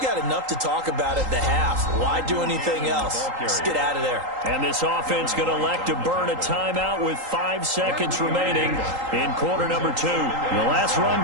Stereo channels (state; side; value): late; left; 3.8 ms